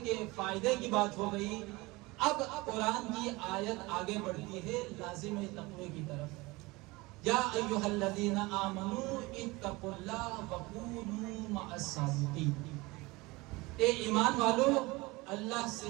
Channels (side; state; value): left; quieter; 22.8 dB